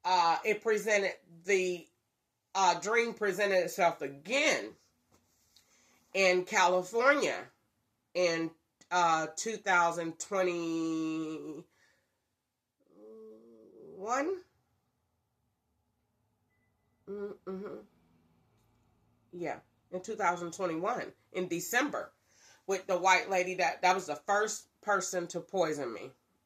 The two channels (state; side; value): identical; both; correlation 1.00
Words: it presented, the dream presented itself again in California in 2021. Yeah, in 2021 in December with the white lady that was the first person to poison me.